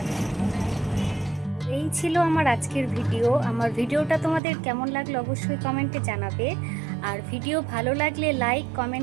এই ছিল আমার আজকের ভিডিও। আমার ভিডিওটা তোমাদের কেমন লাগলো অবশ্যই কমেন্টে জানাবে। আর ভিডিও ভালো লাগলে like,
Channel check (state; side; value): drops out; left; at 4.4 s